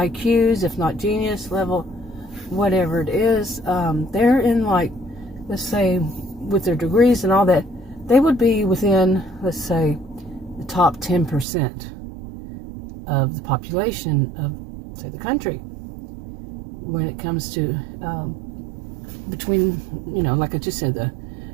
IQs, if not genius level, whatever it is. They're in, like, let's say, with their degrees and all that, they would be within, let's say, the top 10% of the population of, say, the country when it comes to between, like I just said, the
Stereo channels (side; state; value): left; drops out; at 11.5 s